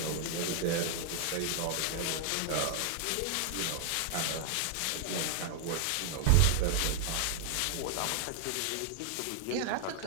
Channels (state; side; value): different; both; correlation 0.00